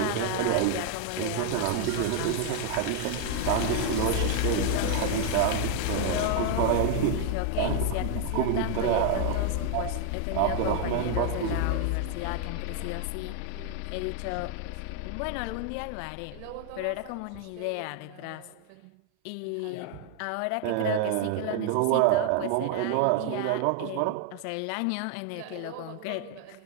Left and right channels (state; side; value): different; both; correlation 0.00